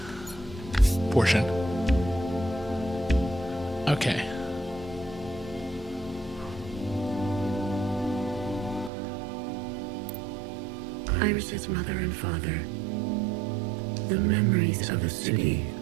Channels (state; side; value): drops out; left; at 8.9 s